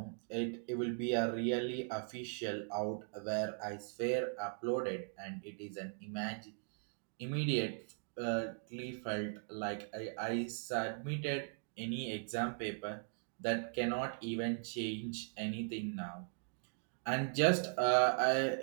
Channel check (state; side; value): silent; left; 52 dB below the other